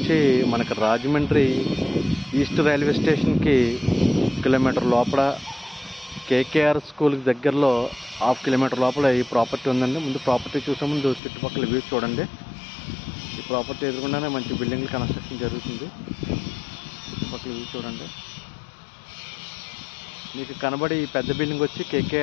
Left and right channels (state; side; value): drops out; right; at 11.2 s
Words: మనకు రాజమండ్రి ఈస్ట్ రైల్వే స్టేషన్కి కిలోమీటర్ లోపల, కేకేఆర్ స్కూల్కి దగ్గరలో హాఫ్ కిలోమీటర్ లోపల ఈ ప్రాపర్టీ ఉందండి. ముందు ప్రాపర్టీ చూసే ముందు చుట్టుపక్కల వ్యూ చూడండి. ఈ ప్రాపర్టీ ఎదురుకుండానే మంచి బిల్డింగ్లు కన్స్ట్రక్షన్ జరుగుతుంది. చుట్టుపక్కల వ్యూ చూడండి. మీకు కనబడి ఈ పెద్ద బిల్డింగ్ వచ్చి